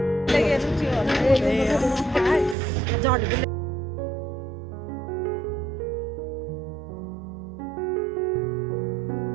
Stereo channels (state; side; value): drops out; left; at 2.6 s